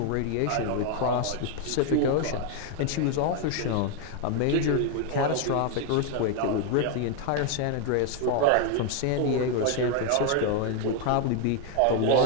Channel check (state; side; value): different; both; correlation 0.01